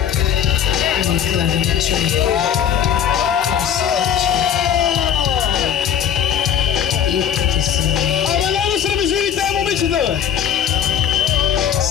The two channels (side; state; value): right; quieter; 9.1 dB